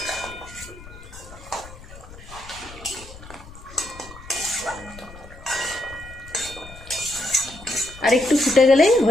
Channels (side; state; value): left; noise; rumble, 17 dB below the sound